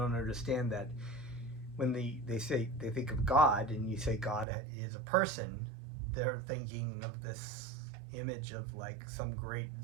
understand that when they think of God, and you say God is a person, they're thinking of this image of like some great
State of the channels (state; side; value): drops out; left; at 4.5 s